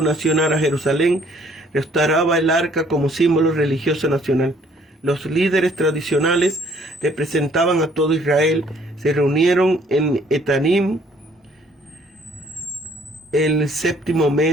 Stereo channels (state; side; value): normal; both; correlation 0.61